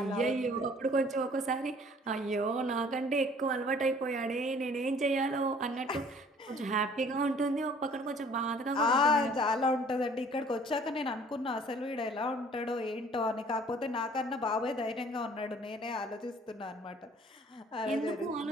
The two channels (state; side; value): normal; both; correlation 0.54